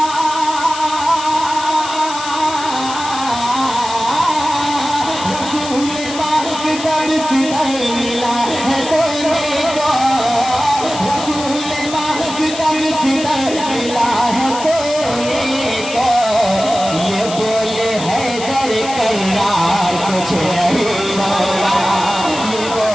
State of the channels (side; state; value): left; noise; hiss, 10 dB below the sound